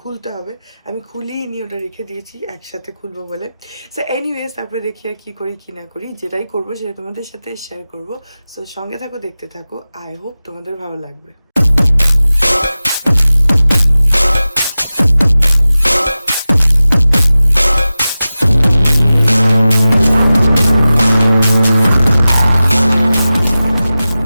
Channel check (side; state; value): both; inverted; correlation -0.95